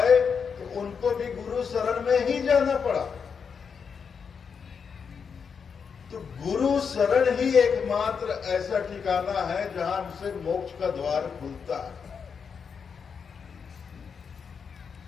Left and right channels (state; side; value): quieter; right; 6.2 dB